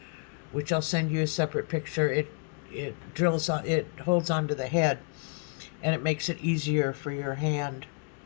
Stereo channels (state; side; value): quieter; right; 38.0 dB